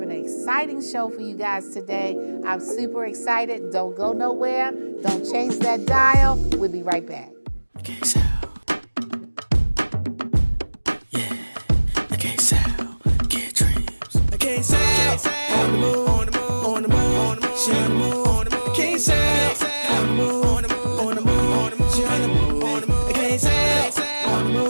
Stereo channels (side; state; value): both; inverted; correlation -1.00